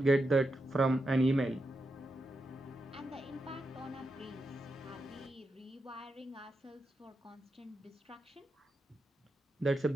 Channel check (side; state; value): both; normal; correlation 0.87